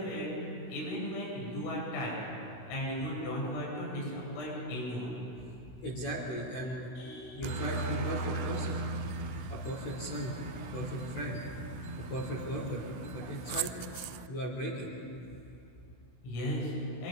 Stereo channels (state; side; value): late; right; 16 ms